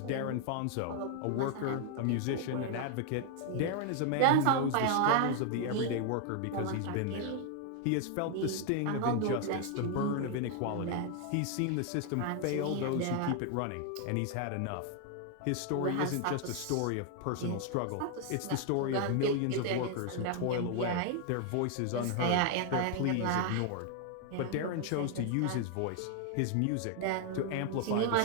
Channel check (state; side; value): different; both; correlation 0.00